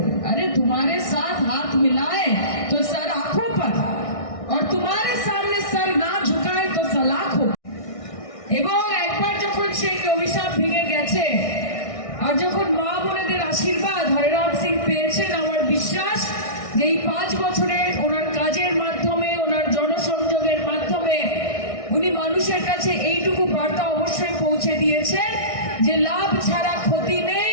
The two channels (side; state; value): right; late; 1.6 ms